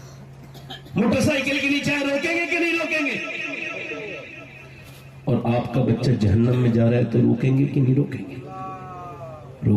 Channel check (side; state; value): both; identical; correlation 1.00